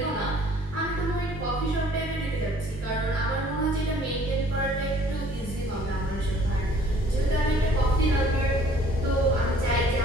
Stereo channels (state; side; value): normal; both; correlation 0.56